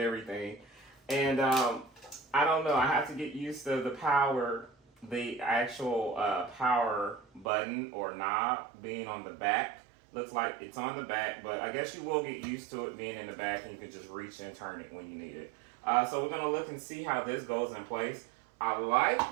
And I don't know, I have to get used to the actual power button or knob being on the back. Looks like it's on the back, but I guess you will get used to it being in the back and you can just reach and turn it when you need it. So we're going to look and see how this goes in place. I like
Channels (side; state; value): left; drops out; at 7.5 s